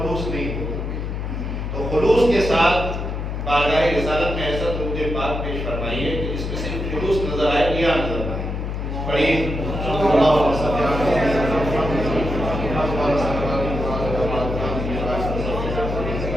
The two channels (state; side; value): noise; left; hum, 4 dB below the sound